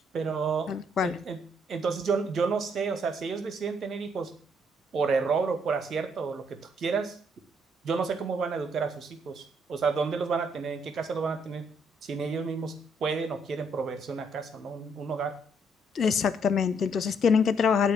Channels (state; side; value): normal; both; correlation 0.70